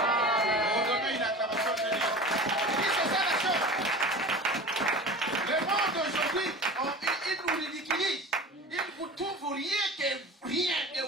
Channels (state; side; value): normal; both; correlation 0.35